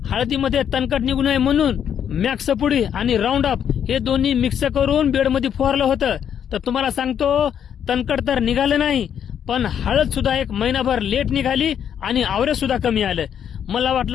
हळदीमध्ये तणकट निघू नये म्हणून मॅक्स पुडी आणि राऊंड अप हे दोन्ही मिक्स करून बेडमध्ये फवारलं होतं। तर तुम्हाला सांगतो तणकट तर निघालं नाही, पण हळद सुद्धा एक महिनाभर लेट निघाली आणि आवरेज सुद्धा कमी आलं। मला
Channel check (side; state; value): right; quieter; 8.8 dB